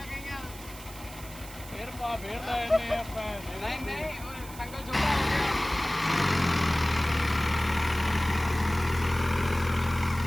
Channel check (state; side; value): noise; right; hiss, 16 dB below the sound